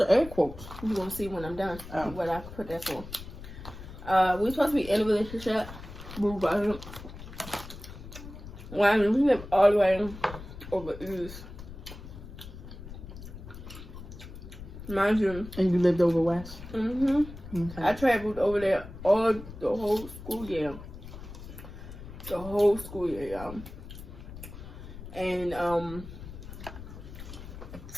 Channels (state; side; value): noise; left; rumble, 13 dB below the sound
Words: air quotes? You gonna see when I'm done what I put that for. We were supposed to be in a relationship. When we live all the way over east. Mind you. And you lived over west? Mm-hmm. Okay. I traveled over there the whole school year. The whole school year, y'all. And